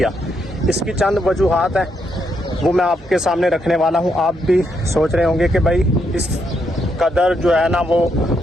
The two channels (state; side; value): normal; both; correlation 0.78